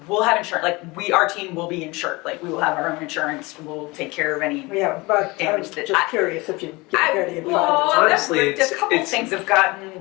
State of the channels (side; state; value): right; quieter; 23.9 dB